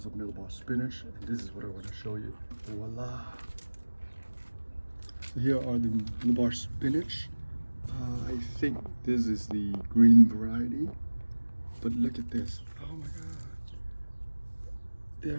are millbar spinach. And this is what I want to show you. Voila. So here are the millbar spinach. I think this is the green variety. But look at this. Oh my God. There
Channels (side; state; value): both; inverted; correlation -1.00